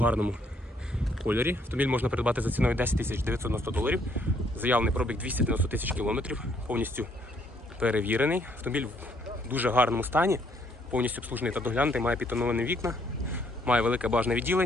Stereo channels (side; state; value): both; normal; correlation 0.68